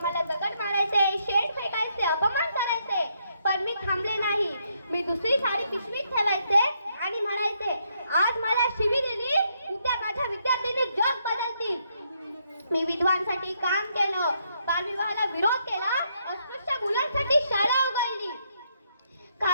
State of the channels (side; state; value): both; inverted; correlation -0.75